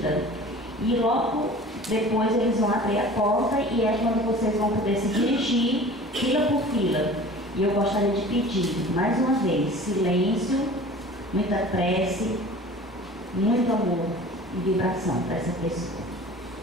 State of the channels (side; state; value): both; normal; correlation 0.42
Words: E logo depois eles vão abrir a porta e é quando vocês vão poder se dirigir fila por fila. E eu gostaria de pedir, mais uma vez, silêncio, muita prece, muito amor e vibração para essa pessoa.